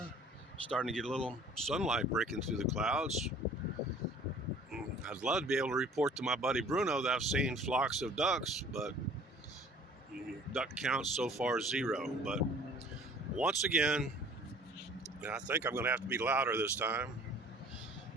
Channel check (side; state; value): both; normal; correlation 0.51